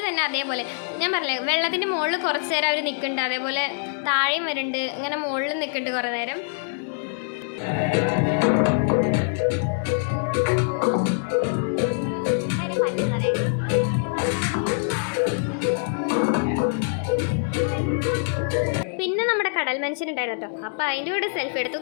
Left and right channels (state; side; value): silent; right; digital silence